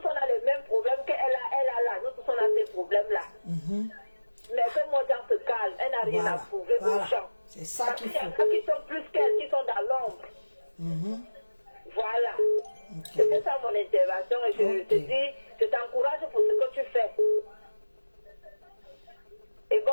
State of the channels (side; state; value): both; inverted; correlation -1.00